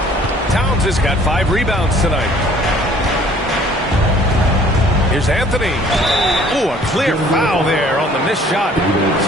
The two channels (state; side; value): normal; both; correlation 0.55